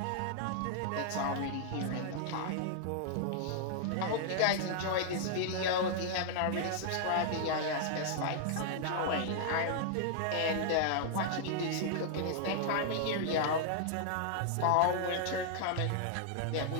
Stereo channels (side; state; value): both; different; correlation -0.01